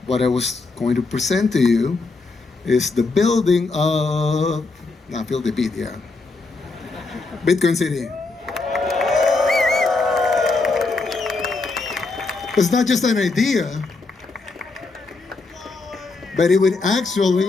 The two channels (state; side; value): quieter; right; 3.8 dB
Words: what I was going to present to you is the building of, feel the beat, yeah. Bitcoin City. It's not just an idea, but it would actually,